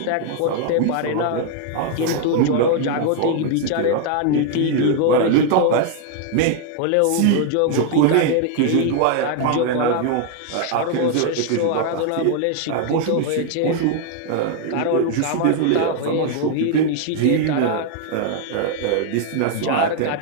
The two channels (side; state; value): both; different; correlation 0.00